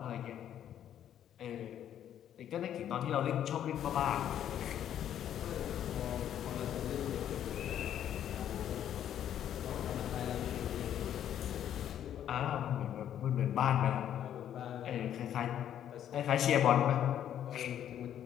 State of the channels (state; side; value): quieter; right; 10.4 dB